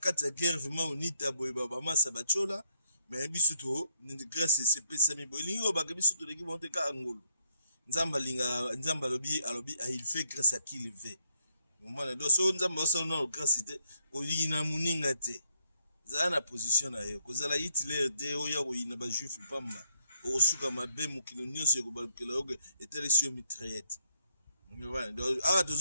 ya guerre vraiment onita boye ba massa bachola mais biso to grâce c'est pesa mi boye lingo ba biso to leki monte ka angolo nzamba linga nzamba alobi il fait grâce à qui il veut moment do so nzamba so no grâce te ko yina muninga te za na position na yo ko zala Hitler de oya ko yina ba juif pamba o suka mabe mukino nyonso yo ko balukela oge etelesio mitraillette ngwana do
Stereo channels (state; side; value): inverted; both; correlation -0.73